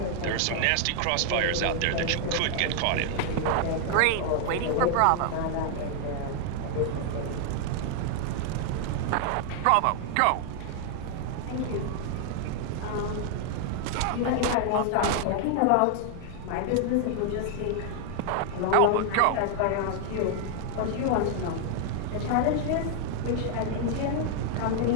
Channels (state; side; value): different; both; correlation 0.00